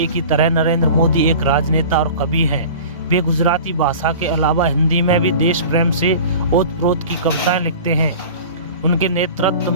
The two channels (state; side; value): inverted; both; correlation -0.38